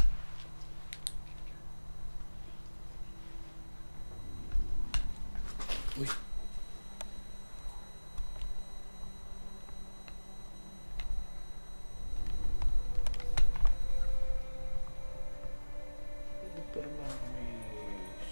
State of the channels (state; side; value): inverted; both; correlation -1.00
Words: Uy. Pero bakit may